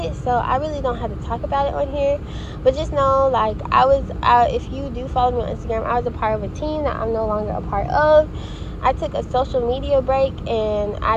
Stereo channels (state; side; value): identical; both; correlation 1.00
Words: so I really don't have to talk about it on here. But just know, like, if you do follow me on Instagram, I was a part of a team that I'm no longer a part of. I took a social media break, and